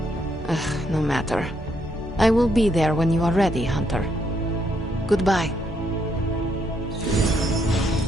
No matter. I will be there when you are ready, Hunter. Goodbye.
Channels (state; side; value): normal; both; correlation 0.75